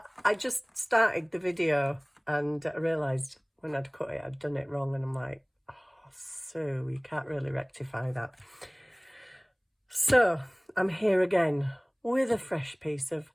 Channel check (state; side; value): identical; both; correlation 1.00